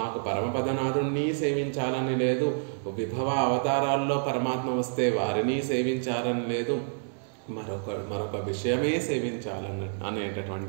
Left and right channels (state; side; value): silent; left; 58 dB below the other